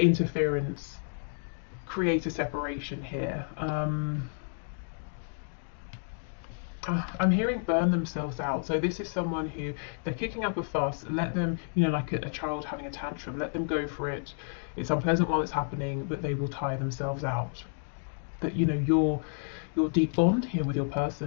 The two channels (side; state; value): right; silent; digital silence